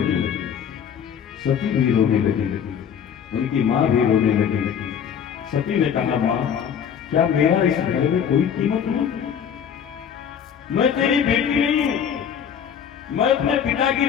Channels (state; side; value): quieter; right; 8.1 dB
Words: सती भी रोने लगी, उनकी मां भी रोने लगी। सती ने कहा, मां, क्या मेरा इस घर में कोई कीमत नहीं? मैं तेरी बेटी नहीं हूं, मैं अपने पिता की